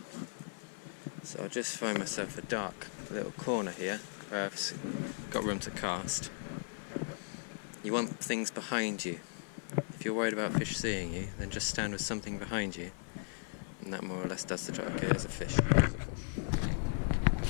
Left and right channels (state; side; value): silent; right; 53 dB below the other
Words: So I'll just find myself a dark little corner here where I've got room to cast. You want things behind you. If you're worried about fish seeing you, then just stand with something behind you, and that more or less does the job. Okay, there's a fish.